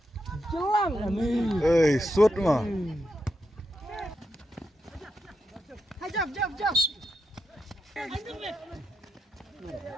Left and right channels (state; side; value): normal; both; correlation 0.85